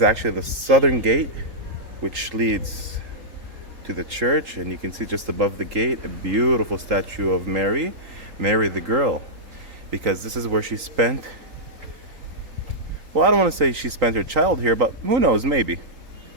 actually the southern gate, which leads to the church, and you can see just above the gate a beautiful statue of Mary the girl, because this is where she spent, well, I don't want to say she spent her child here, but who knows, maybe.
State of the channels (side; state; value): left; late; 3.7 ms